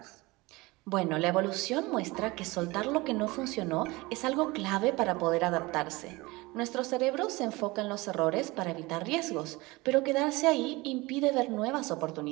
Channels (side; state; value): left; quieter; 22.4 dB